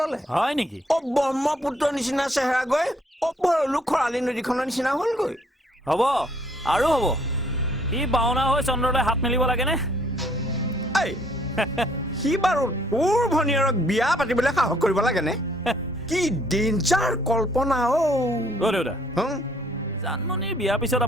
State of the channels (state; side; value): normal; both; correlation 0.64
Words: হয় নেকি ব্ৰহ্মপুত্ৰৰ নিচিনা চেহেৰা গৈ ভৰলু খৰালি নদীখনৰ নিচিনা হ'লগৈ হ'ব আৰু হ'ব ই বাওনা হৈ চন্দ্ৰলৈ হাত মেলিব লাগেনে এই সি বাৰু তোৰ ভনীয়েৰক বিয়া পাতিবলৈ সাহস কৰিব লাগেনে কি ডেঞ্জাৰ কল্পনা দেউতা জানমণিৰ বিয়াৰ পিছত